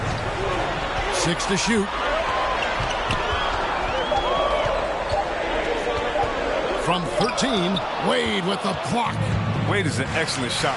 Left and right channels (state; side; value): identical; both; correlation 1.00